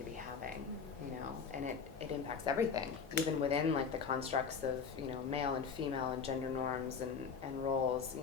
be having, and it impacts everything, even within like the constructs of, male and female and gender norms and roles,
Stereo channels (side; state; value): right; quieter; 6.0 dB